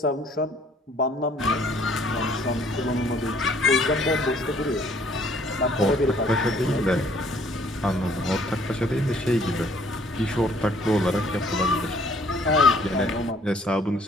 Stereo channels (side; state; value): both; normal; correlation 0.60